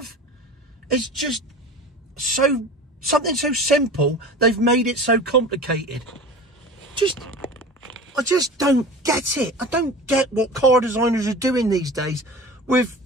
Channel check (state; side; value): normal; both; correlation 0.36